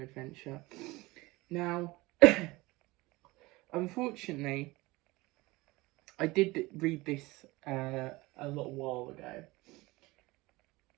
Adventure. Now, unfortunately, I did read this a little while ago.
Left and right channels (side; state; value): left; quieter; 21.5 dB